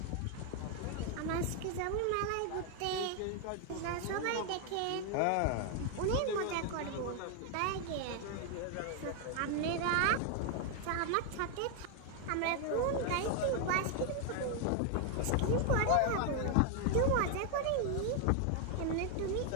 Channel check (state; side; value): different; both; correlation 0.00